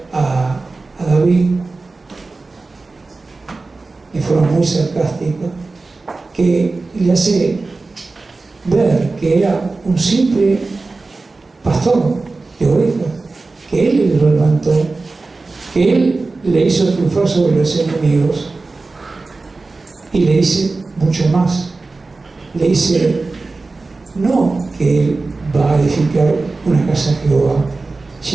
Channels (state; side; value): quieter; left; 3.6 dB